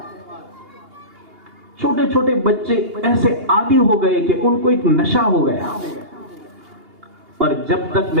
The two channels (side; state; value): left; late; 2.8 ms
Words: چھوٹے چھوٹے بچے ایسے عادی ہو گئے کہ ان کو ایک نشہ ہو گیا. اور جب تک